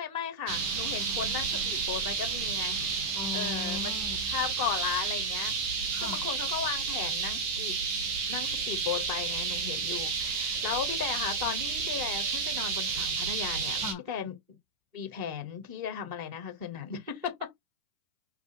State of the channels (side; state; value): left; late; 10 ms